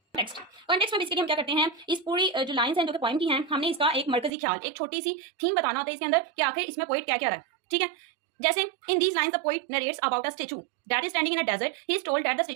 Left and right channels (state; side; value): drops out; left; at 4.3 s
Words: कॉन्टेक्स्ट में बेसिकली हम क्या करते हैं इस पूरी जो लाइंस हैं जो कि पॉइंट की हैं हमने इसका एक मरकजी ख्याल एक छोटी सी थीम बताना होता है इसके अंदर कि आखिर इसमें पोइट क्या क्या रहा है. ठीक है, जैसे in these lines the poet narrates about a statue that is standing in a desert. He is told that the